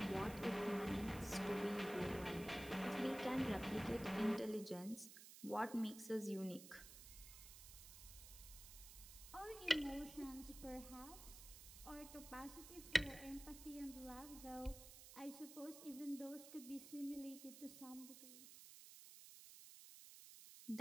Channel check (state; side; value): noise; right; hiss, 14 dB below the sound